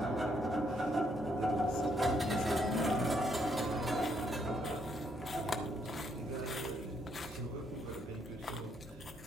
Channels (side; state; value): both; normal; correlation 0.73